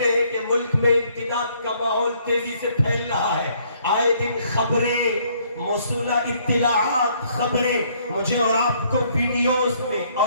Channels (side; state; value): both; inverted; correlation -0.65